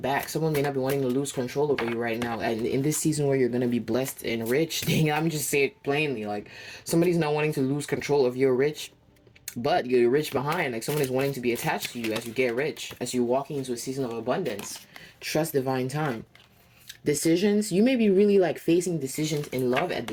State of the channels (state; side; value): identical; both; correlation 1.00